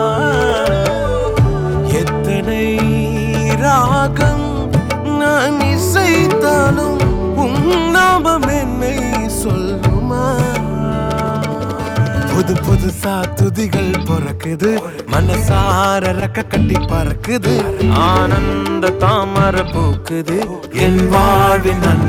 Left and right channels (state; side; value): identical; both; correlation 1.00